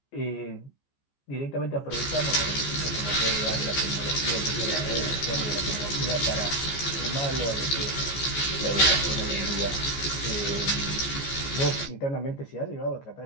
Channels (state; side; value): late; right; 14 ms